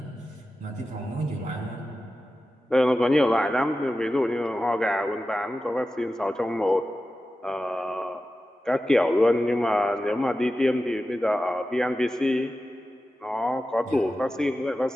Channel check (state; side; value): normal; both; correlation 0.93